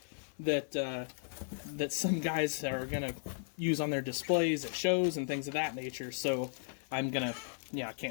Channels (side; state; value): right; silent; 54 dB below the other